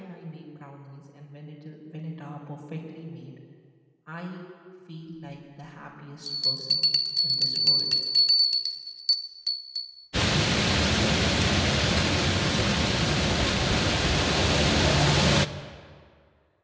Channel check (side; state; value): both; identical; correlation 1.00